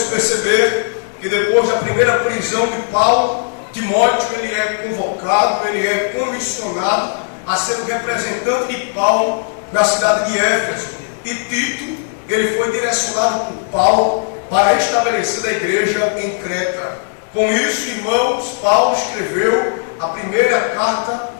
perceber que depois da primeira prisão de Paulo, Timóteo ele é convocado, ele é comissionado a ser o representante de Paulo na cidade de Éfeso. E Tito, ele foi direcionado por Paulo para estabelecer a igreja em Creta. Com isso, irmãos, Paulo escreveu a primeira carta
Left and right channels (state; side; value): silent; right; 65 dB below the other